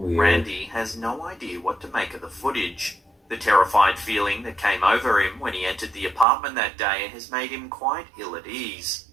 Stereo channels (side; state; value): left; drops out; at 6.2 s